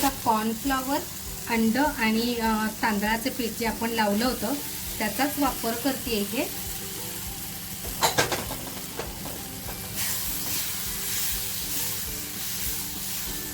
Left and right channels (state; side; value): identical; both; correlation 1.00